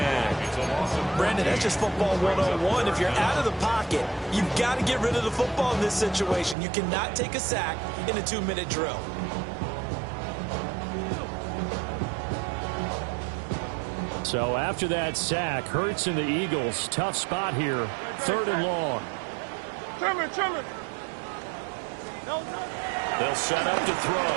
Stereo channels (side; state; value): left; drops out; at 6.6 s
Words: Brandon, that's just football 101. If you're out of the pocket, you've got to get rid of the football in this situation. You cannot take a sack in a 2-minute drill. So after that sack, Hurts and the Eagles, tough spot here, 3rd and long. Trimmer. They'll set up to